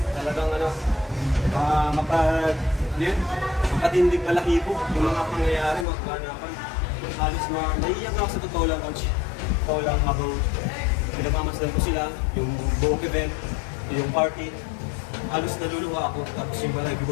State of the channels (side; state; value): right; drops out; at 5.9 s